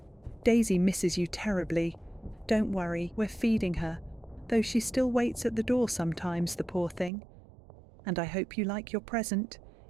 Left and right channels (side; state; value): left; drops out; at 7.1 s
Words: Daisy misses you terribly. Don't worry, we're feeding her, though she still waits at the door sometimes, the poor thing. And I hope you like your present.